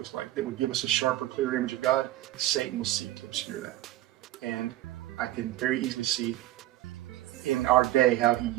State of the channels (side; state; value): left; quieter; 15.3 dB